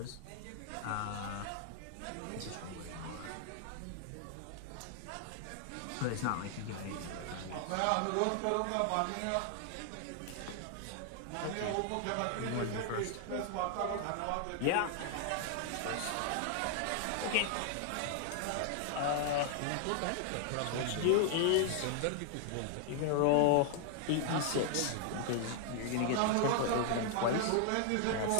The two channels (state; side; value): different; both; correlation 0.00